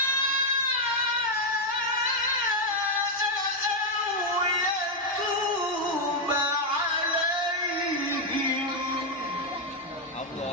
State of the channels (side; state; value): both; normal; correlation 0.01